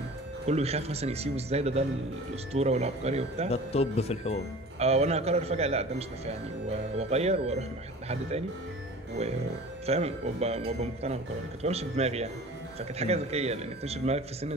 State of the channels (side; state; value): both; normal; correlation 0.41